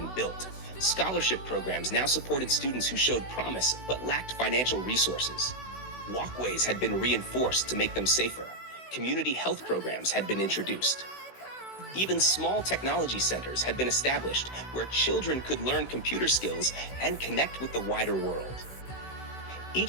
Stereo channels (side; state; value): right; late; 16 ms